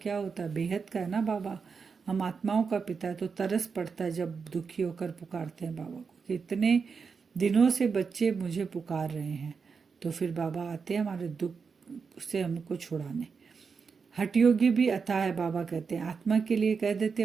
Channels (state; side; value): quieter; left; 5.5 dB